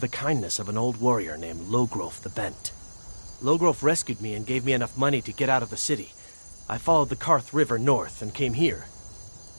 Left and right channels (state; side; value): inverted; both; correlation -1.00